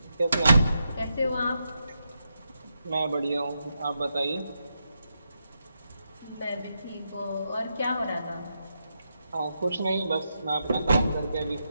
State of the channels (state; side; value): inverted; both; correlation -0.84